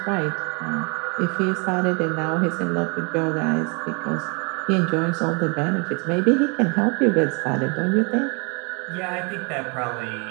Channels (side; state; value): left; quieter; 32.8 dB